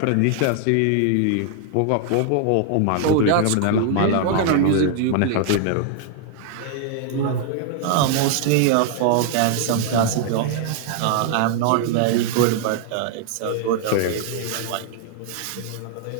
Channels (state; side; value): different; both; correlation 0.00